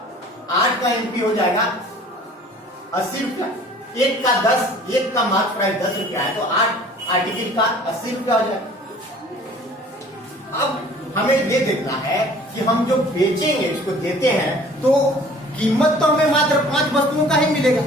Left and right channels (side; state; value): both; normal; correlation 0.50